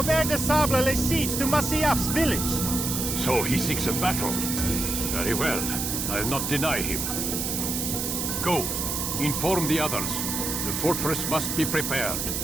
de Sable lays siege to Masyaf's village. So he seeks a battle. Very well. I'll not deny him. Go. Inform the others. The fortress must be prepared.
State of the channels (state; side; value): noise; right; hiss, 2 dB below the sound